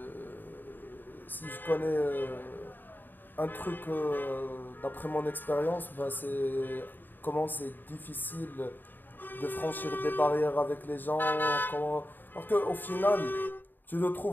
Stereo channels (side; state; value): right; late; 0.091 ms